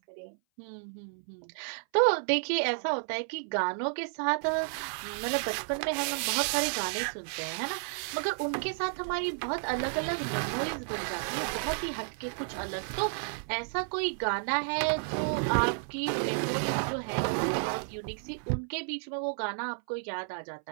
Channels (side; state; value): left; silent; 57 dB below the other